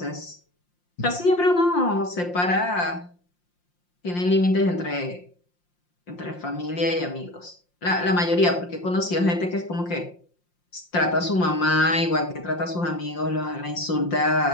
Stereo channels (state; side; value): late; right; 5.7 ms